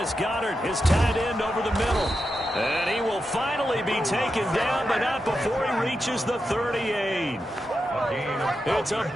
Goedert, his tight end, over the middle. And he will finally be taken down, but not before he reaches the 38. It's a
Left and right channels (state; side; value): normal; both; correlation 0.88